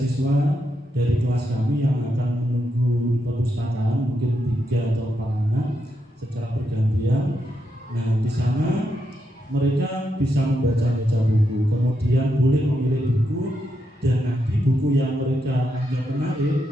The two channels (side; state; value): both; normal; correlation 0.83